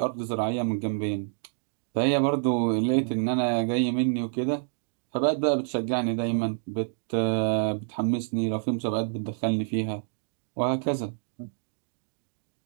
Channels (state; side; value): silent; left; digital silence